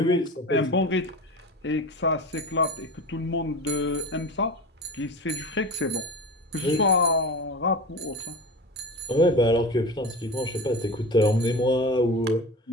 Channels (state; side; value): normal; both; correlation 0.31